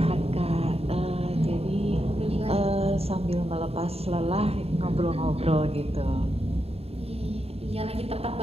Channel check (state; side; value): late; left; 0.29 ms